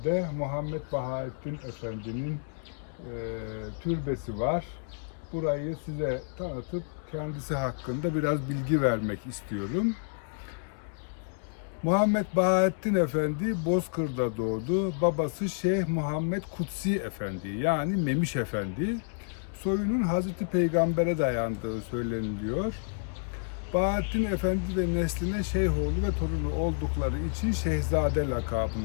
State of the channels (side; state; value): right; silent; digital silence